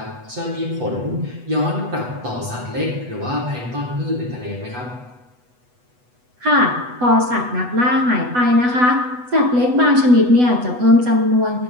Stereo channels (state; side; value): late; left; 8.1 ms